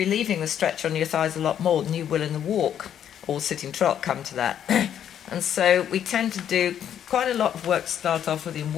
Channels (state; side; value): quieter; right; 9.6 dB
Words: the stretch on your thighs a lot more than you will in the walk or sitting trot, come to that. And so we tend to do quite a lot of work to start off with in